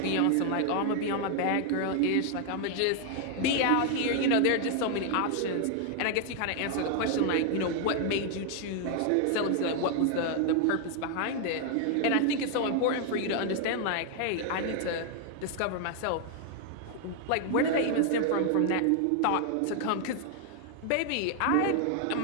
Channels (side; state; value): both; different; correlation 0.00